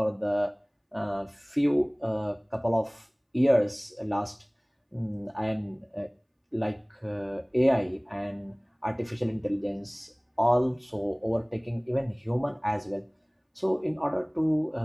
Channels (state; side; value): identical; both; correlation 1.00